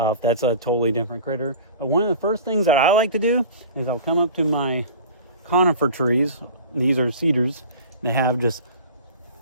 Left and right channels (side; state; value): both; inverted; correlation -0.40